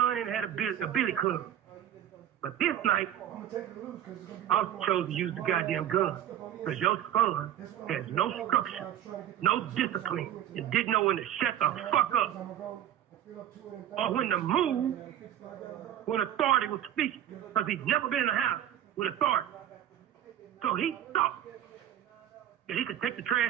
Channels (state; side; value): quieter; left; 11.1 dB